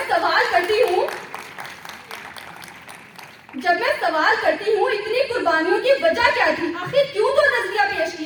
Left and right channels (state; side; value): identical; both; correlation 1.00